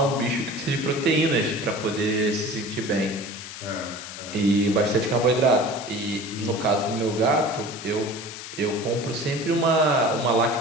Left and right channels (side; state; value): left; noise; hiss, 11 dB below the sound